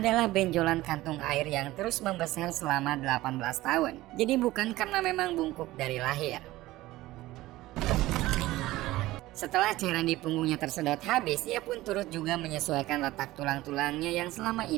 benjolan kantung air yang terus membesar selama 18 tahun. Jadi bukan karena memang bungkuk dari lahir. Setelah cairan di punggungnya tersedot habis, ia pun turut juga menyesuaikan letak tulang-tulangnya yang selama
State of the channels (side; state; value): left; quieter; 17.4 dB